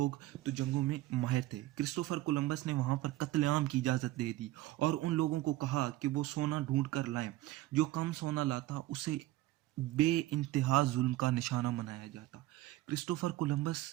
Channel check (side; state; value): left; quieter; 16.2 dB